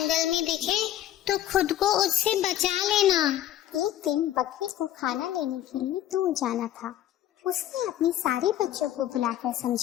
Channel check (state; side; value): quieter; right; 12.4 dB